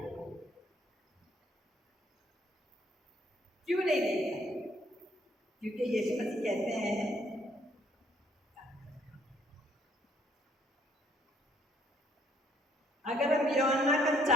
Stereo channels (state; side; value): normal; both; correlation 0.65